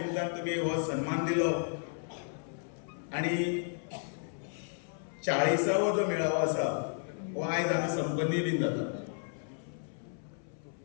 तुम्ही हो सन्मान दिलो आणि 40वा जो मेळावा आसा हो आयज हांगा संपन्नी बीन जाता.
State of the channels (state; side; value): silent; right; 56 dB below the other